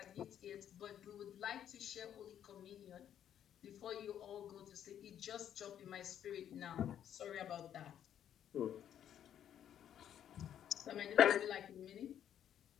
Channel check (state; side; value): quieter; right; 10.0 dB